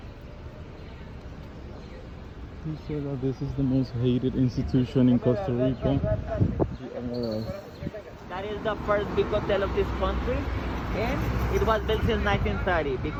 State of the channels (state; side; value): identical; both; correlation 1.00